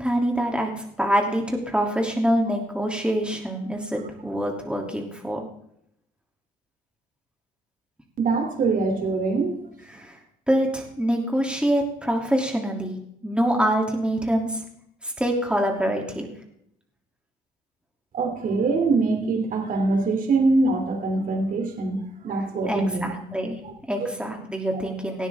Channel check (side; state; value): both; normal; correlation 0.76